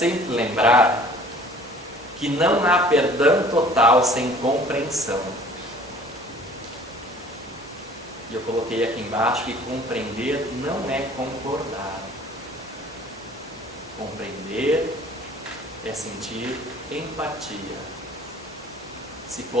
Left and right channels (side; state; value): both; normal; correlation 0.50